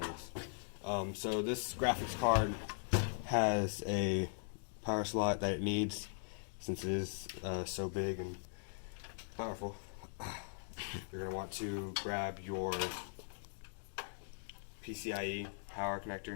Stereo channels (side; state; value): right; silent; digital silence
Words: So this graphics card has a power slot that it needs, since it is so big and powerful. You're going to want to grab your PCIe power